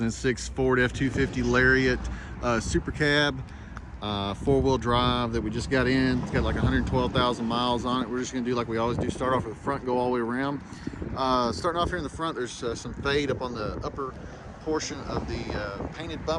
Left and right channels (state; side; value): identical; both; correlation 1.00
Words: Ford F250 Lariat Super Cab, four-wheel drive that we just got in. It's got like 112,000 miles on it. We're just gonna do like we always do, start off with the front, go all the way around. Starting off here in the front, there's some fade up on the upper portion of the painted